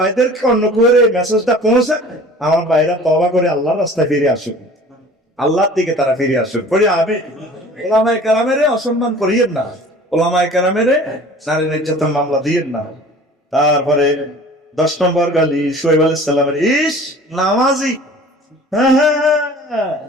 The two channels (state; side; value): normal; both; correlation 0.45